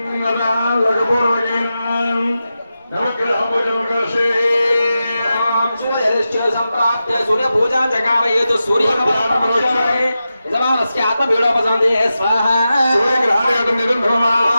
संप्राप्य सूर्य पूजा जगावयेतु सूर्य यजमानस्य आत्मवीडोपसंदे स्वाहा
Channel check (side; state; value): both; inverted; correlation -0.91